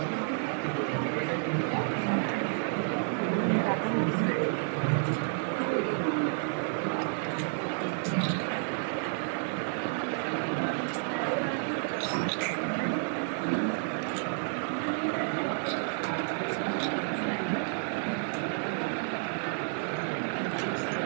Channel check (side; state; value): left; silent; 57 dB below the other